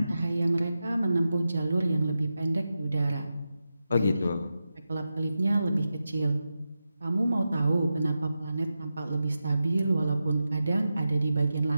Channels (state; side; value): inverted; both; correlation -0.91